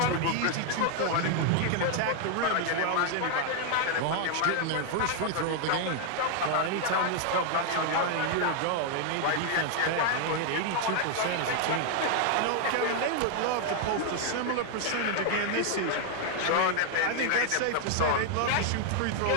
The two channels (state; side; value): different; both; correlation 0.00